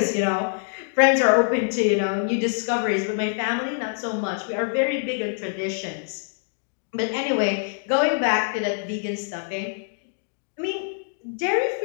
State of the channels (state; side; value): silent; right; digital silence